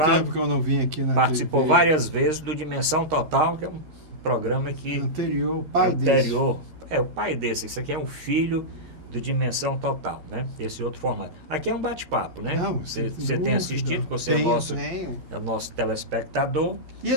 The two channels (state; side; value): late; left; 13 ms